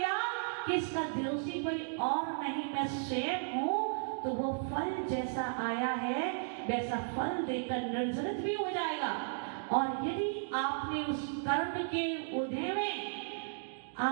कि इसका दोषी कोई और नहीं, मैं स्वयं हूं, तो वो फल जैसा आया है वैसा फल देकर निर्जरित भी हो जाएगा। और यदि आपने उस कर्म के उदय में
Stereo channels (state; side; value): silent; left; digital silence